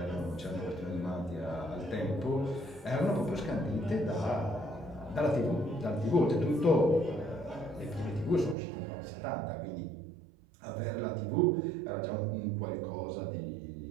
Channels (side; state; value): left; drops out; at 8.6 s